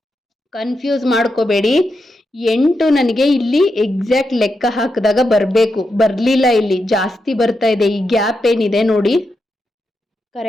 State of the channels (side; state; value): both; normal; correlation 0.86